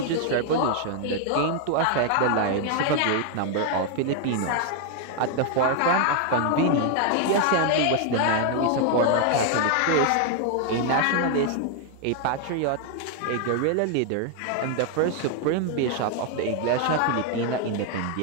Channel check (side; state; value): both; different; correlation 0.00